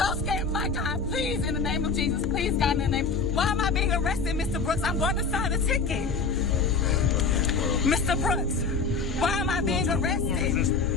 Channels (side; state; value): right; quieter; 4.6 dB